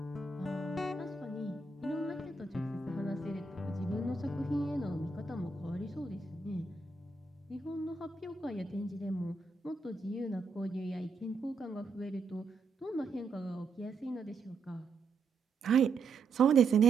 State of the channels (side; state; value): left; quieter; 4.1 dB